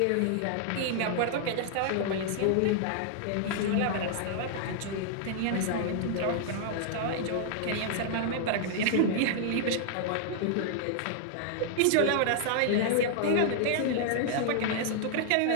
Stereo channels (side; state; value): both; different; correlation -0.01